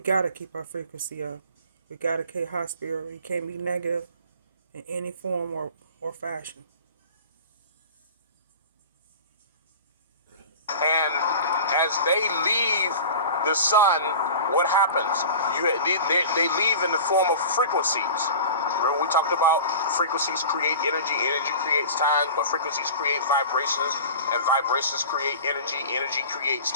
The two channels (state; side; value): inverted; both; correlation -0.37